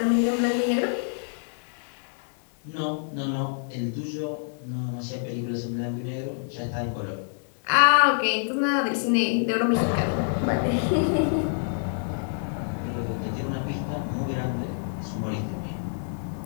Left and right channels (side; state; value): right; silent; digital silence